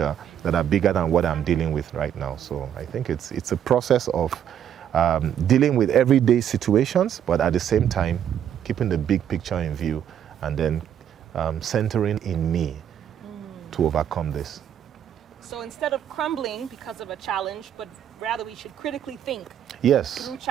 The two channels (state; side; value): quieter; left; 9.6 dB